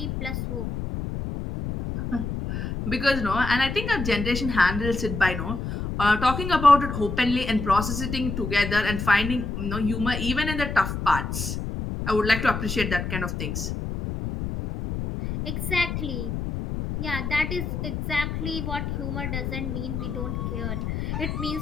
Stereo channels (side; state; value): left; noise; rumble, 4 dB below the sound